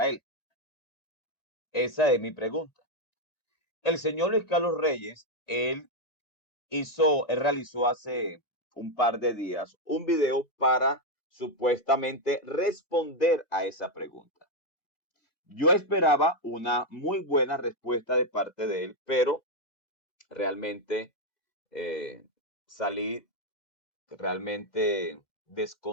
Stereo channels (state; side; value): late; right; 1.9 ms